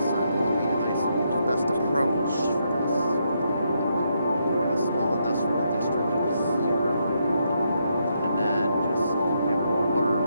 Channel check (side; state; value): both; inverted; correlation -0.79